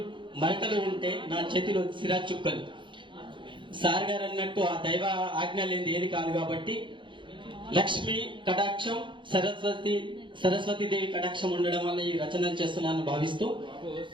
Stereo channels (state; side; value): late; left; 0.24 ms